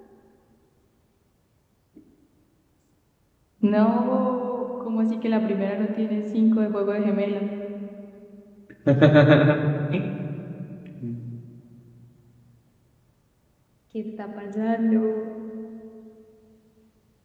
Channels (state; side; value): identical; both; correlation 1.00